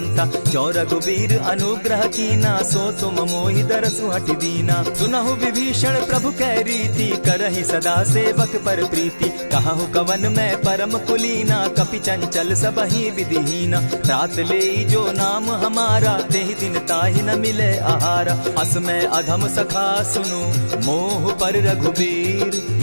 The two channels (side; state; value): both; inverted; correlation -1.00